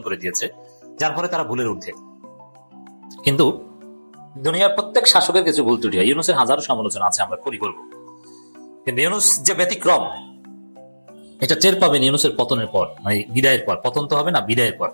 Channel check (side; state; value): both; inverted; correlation -1.00